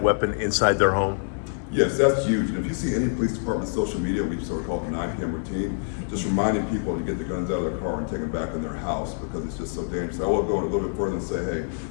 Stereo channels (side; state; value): right; silent; digital silence